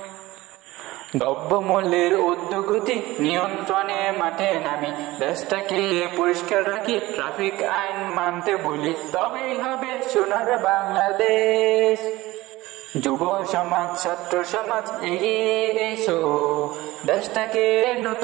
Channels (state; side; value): quieter; left; 18.8 dB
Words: দ্রব্যমূল্যের ঊর্ধ্বগতি নিয়ন্ত্রণে মাঠে নামি, দেশটাকে পরিষ্কার রাখি, ট্রাফিক আইন মানতে বলি, তবেই হবে সোনার বাংলাদেশ। যুব সমাজ, ছাত্র সমাজ এগিয়ে এসো, দেশটাকে